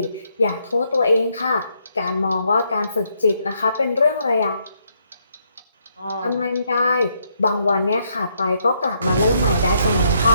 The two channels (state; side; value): inverted; both; correlation -0.74